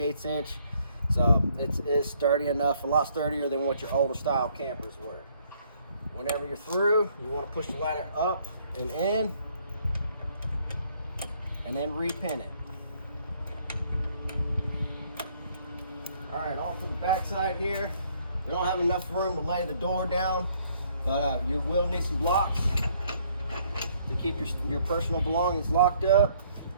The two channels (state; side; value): inverted; both; correlation -0.65